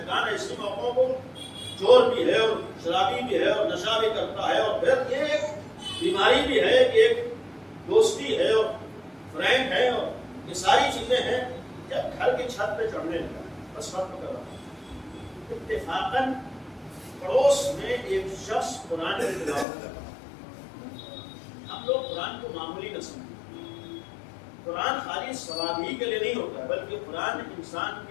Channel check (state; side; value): drops out; right; at 19.7 s